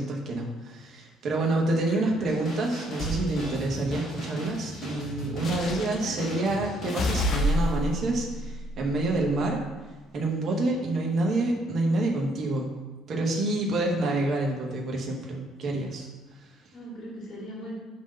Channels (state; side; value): normal; both; correlation 0.69